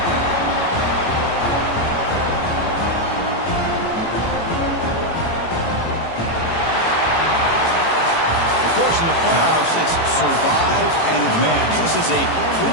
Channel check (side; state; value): right; late; 18 ms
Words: Of course, in the playoffs, it's survive and advance. This is a